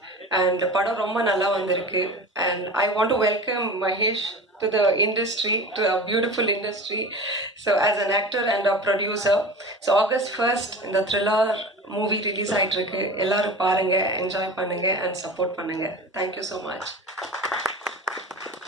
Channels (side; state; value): both; normal; correlation 0.34